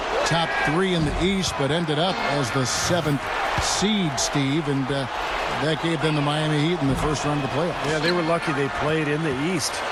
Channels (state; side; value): identical; both; correlation 1.00